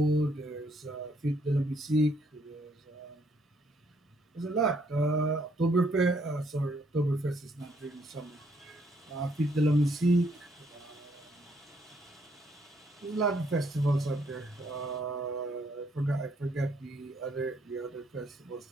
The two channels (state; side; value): normal; both; correlation 0.70